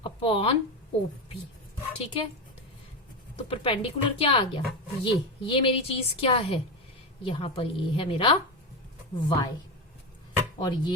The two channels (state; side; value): normal; both; correlation 0.16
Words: upon OP, ठीक है। तो परपेंडिकुलर क्या आ गया, ये मेरी चीज क्या है, यहां पर ये है मेरा y और